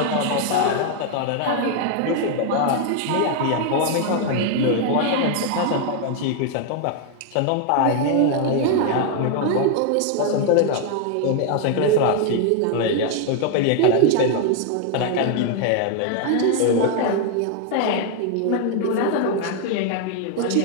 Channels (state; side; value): different; both; correlation 0.00